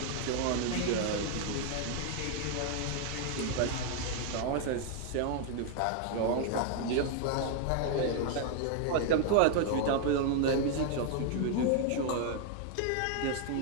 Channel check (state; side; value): different; both; correlation 0.00